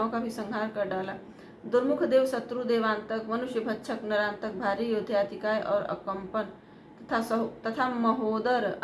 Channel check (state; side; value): identical; both; correlation 1.00